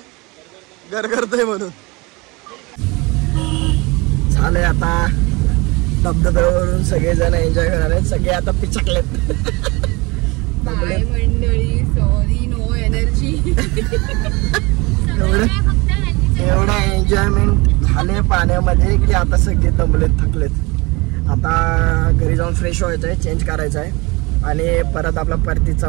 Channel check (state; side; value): quieter; left; 25.1 dB